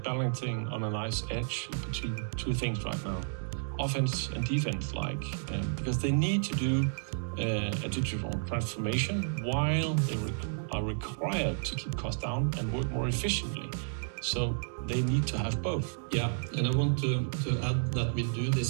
on a nice edge between two things right now, offense and defense, because they need to do a digital transformation while they are required to keep costs down and work more efficiently. So they need to have both. Yeah, and I want to add that we do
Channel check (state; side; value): silent; left; digital silence